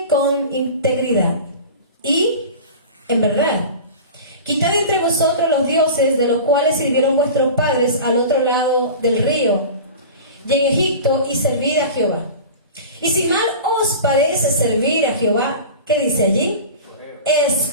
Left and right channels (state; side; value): inverted; both; correlation -0.34